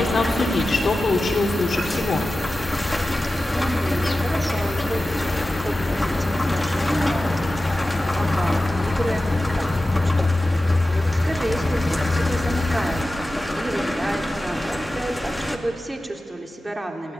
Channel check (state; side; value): normal; both; correlation 0.94